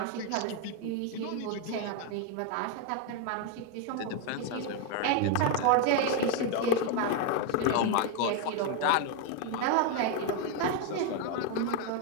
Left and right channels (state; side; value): different; both; correlation 0.01